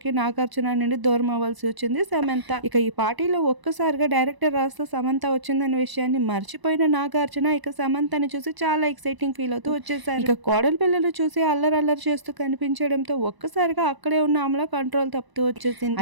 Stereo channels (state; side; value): late; left; 1.0 ms